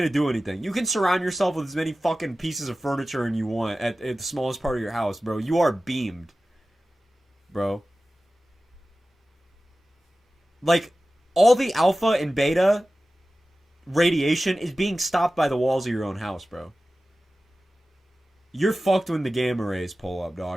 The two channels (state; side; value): normal; both; correlation 0.96